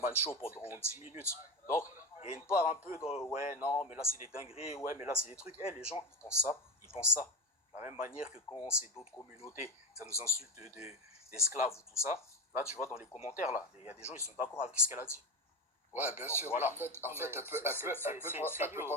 show pendant 10 minutes. Donc, il y a une part un peu de ouais, non, mais là, c'est des dingueries, ouais, mais là, c'est des trucs. Les gens, ils pensent ça, ils pensent ça. De la même manière que quand c'est d'autres communautés, ça nous insulte d'esclaves ou tout ça. Là, tu vois, dans les commentaires, là, il y a des gens, ils sont d'accord avec ce qu'elle a dit. Ouais, bien Donc, sûr. voilà. En fait, elle peut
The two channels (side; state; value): both; normal; correlation 0.18